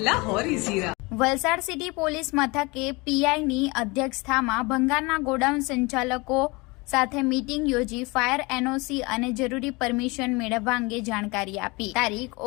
લાહોરી ઝીરા. વલસાડ સિટી પોલીસ મથકે પીઆઈની અધ્યક્ષતામાં ભંગારના ગોડાઉન સંચાલકો સાથે મીટિંગ યોજી ફાયર એનઓસી અને જરૂરી પરમિશન મેળવવા અંગે જાણકારી આપી. તારીખ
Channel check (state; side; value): quieter; right; 25.7 dB